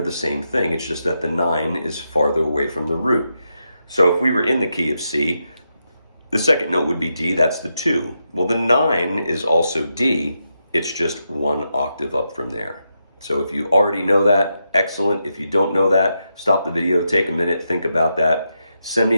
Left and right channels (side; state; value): both; inverted; correlation -0.85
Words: the same thing. It's just that the 9 is farther away from the root. So if we were in the key of C, the second note would be D, that's the 2. Well, the 9 is also D, it's just 1 octave up from there. So if you already know that, excellent. If you don't know that, stop the video, take a minute, think about that. Send me